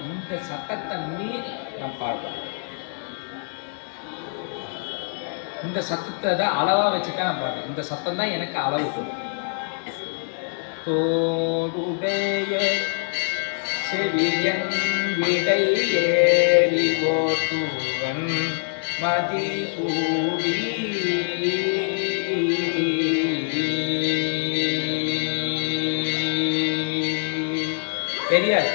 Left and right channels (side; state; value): right; silent; digital silence